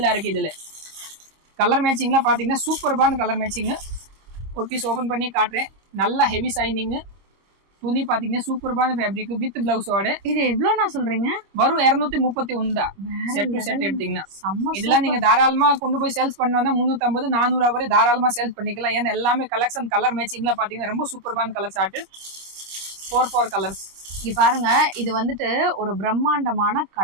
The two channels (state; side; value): late; left; 26 ms